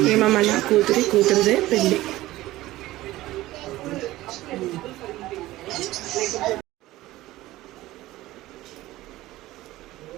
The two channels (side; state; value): left; quieter; 16.9 dB